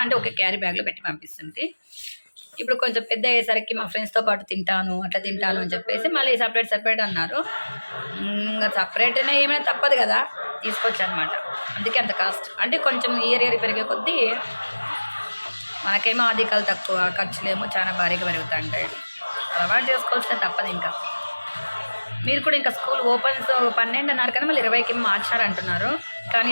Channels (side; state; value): both; inverted; correlation -1.00